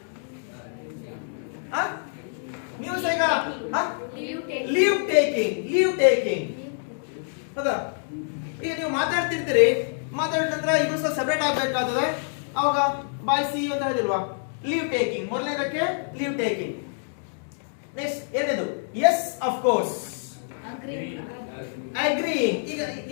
ನೀವು ಈಗ ಲೀವ್ ಟೇಕಿಂಗ್ ಹೌದಾ? ಈಗ ನೀವು ಮಾತಾಡ್ತಿರ್ತೀರಿ, ಮಾತಾಡಿದ ನಂತರ ಇಬ್ಬರು ಸಹ ಸೆಪರೇಟ್ ಆಗ್ಬೇಕಾಗ್ತದೆ. ಅವಾಗ ಬಾಯ್ ಸಿ ಯು ಅಂತ ಹೇಳಿಲ್ವಾ? ಲೀವ್ ಟೇಕಿಂಗ್ ಮೊದಲನೇದಕ್ಕೆ ಲೀವ್ ಟೇಕಿಂಗ್. ನೆಕ್ಸ್ಟ್ ಎರಡನೇದು ಎಸ್ ಆಫ್ ಕೋರ್ಸ್, ಅಗ್ರೀಯಿಂಗ್. ಈಗ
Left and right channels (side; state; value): right; silent; digital silence